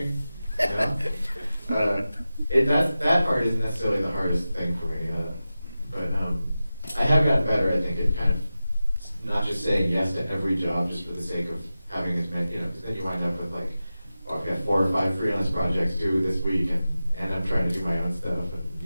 That part isn't necessarily the hardest thing for me, but I have gotten better. I think at kind of not just saying yes to every job just for the sake of having as many, because then you wind up with like, I've got 4 or 5 freelance projects due this week, and I'm trying to do my own stuff, and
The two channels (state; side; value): inverted; both; correlation -0.94